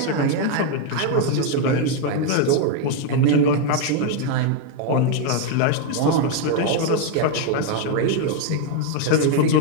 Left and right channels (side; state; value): both; different; correlation 0.01